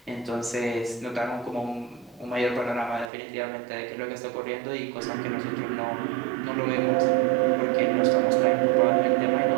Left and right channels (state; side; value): drops out; left; at 3.1 s